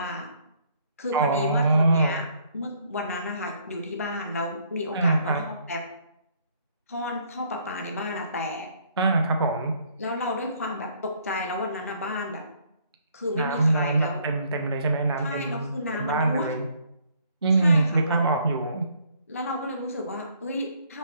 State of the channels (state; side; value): inverted; both; correlation -0.65